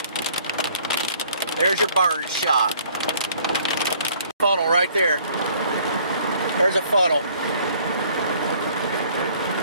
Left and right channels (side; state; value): both; inverted; correlation -0.58